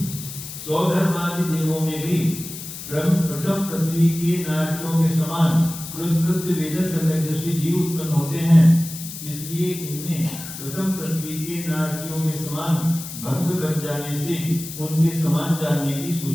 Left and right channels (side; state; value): left; noise; hiss, 10 dB below the sound